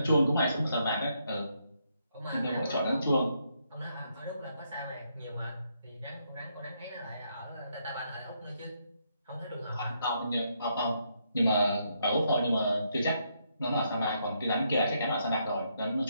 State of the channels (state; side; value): inverted; both; correlation -0.76